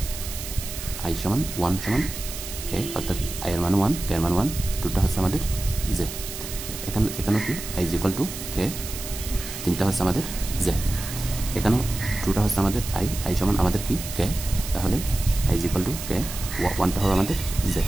আই সমান 1 সমান কে, অর্থাৎ আই এর মান 1 কে এর মান 1, 2টা হচ্ছে আমাদের জে। এখানেও কি আই ইজ ইকুয়াল টু কে, 3টা হচ্ছে আমাদের জে। এখানেও 2টা হচ্ছে আমাদের আই সমান আমাদের কি কে, তাহলে আই ইজ ইকুয়াল টু কে, 1টা হবে আমাদের জে।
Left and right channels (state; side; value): noise; right; hiss, 9 dB below the sound